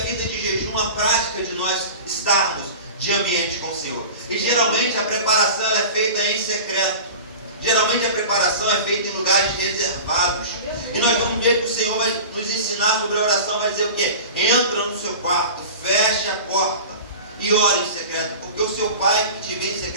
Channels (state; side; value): inverted; both; correlation -0.35